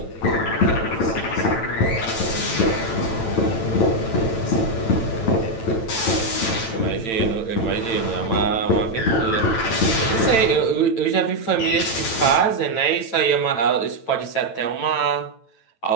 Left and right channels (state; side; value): late; right; 9.0 ms